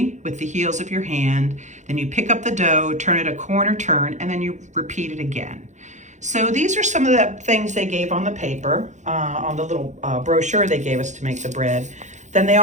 with the heels of your hand. Then you pick up the dough, turn it a corner turn, and then you repeat it again. So these are some of the things they gave on the paper, on the little brochure they gave us to make the bread. Then they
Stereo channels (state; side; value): late; left; 0.35 ms